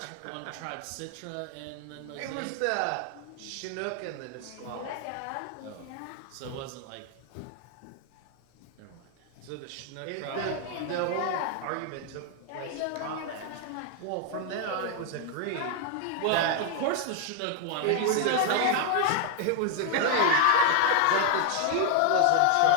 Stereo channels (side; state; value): both; different; correlation 0.00